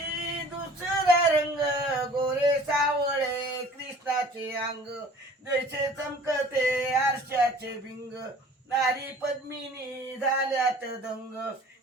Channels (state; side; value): normal; both; correlation 0.48